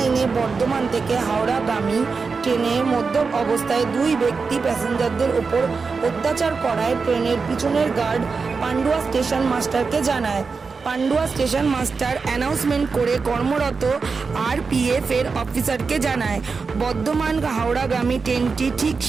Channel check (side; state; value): left; quieter; 4.8 dB